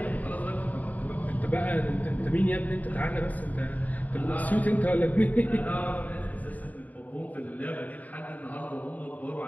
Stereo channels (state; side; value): late; right; 0.076 ms